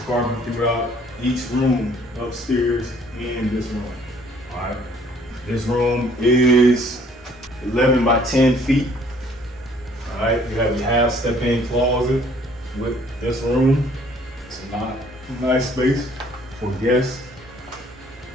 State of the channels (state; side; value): normal; both; correlation 0.59